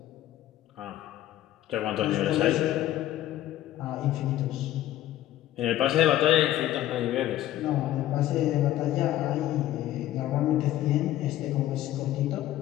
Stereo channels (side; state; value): right; quieter; 13.5 dB